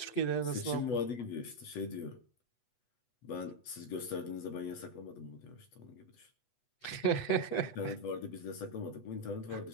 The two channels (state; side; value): late; right; 8.1 ms